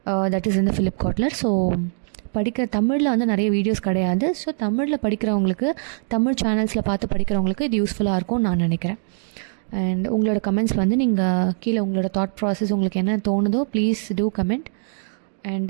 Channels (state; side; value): silent; left; digital silence